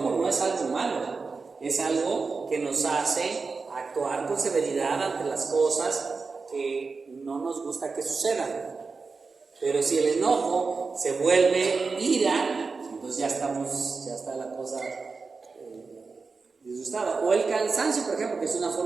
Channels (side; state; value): left; quieter; 4.4 dB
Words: no es algo malo, es algo que nos hace actuar con severidad ante las cosas que no nos gusta que sucedan. Pero si el enojo se vuelve ira, entonces ya está la cosa disgustada. O el cansancio, por ejemplo, que es una